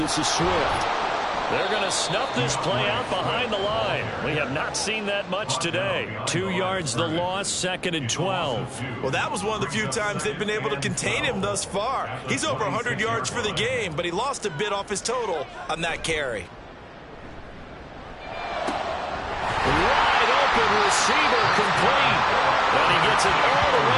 is Swift. They're going to snuff this play out behind the line. We have not seen that much today. 2 yards the loss, 2nd and 12. Well, that was one of the few times they've been able to contain him thus far. He's over 100 yards for the game, but he lost a bit off his total on that carry. Wide open receiver complete. And he gets it all the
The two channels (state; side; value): identical; both; correlation 1.00